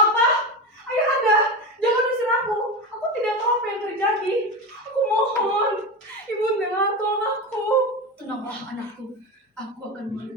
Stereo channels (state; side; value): normal; both; correlation 0.21